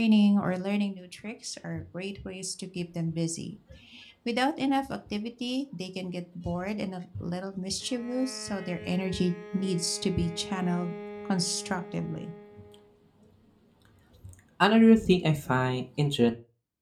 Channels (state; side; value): identical; both; correlation 1.00